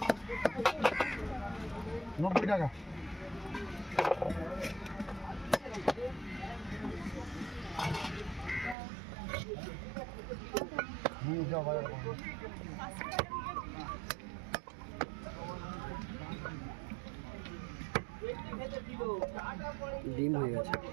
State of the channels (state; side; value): drops out; left; at 8.8 s